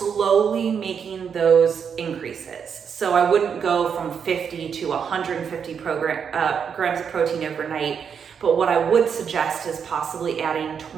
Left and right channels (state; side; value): quieter; left; 7.0 dB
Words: making those increases. So I wouldn't go from 50 to 150 grams of protein overnight. But what I would suggest is possibly adding